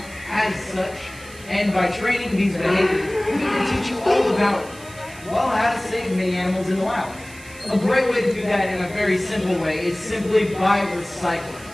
as such, and by training these behaviors, we can teach you all about, well, how to save many animals in the wild. A great way to do that in a very simple way is simply by recycling.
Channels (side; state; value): right; noise; hiss, 20 dB below the sound